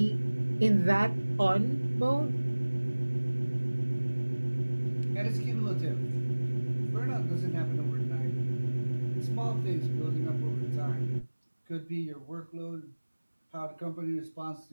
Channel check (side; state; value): both; inverted; correlation -1.00